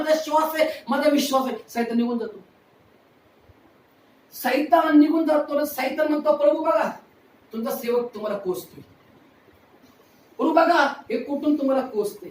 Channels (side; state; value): both; identical; correlation 1.00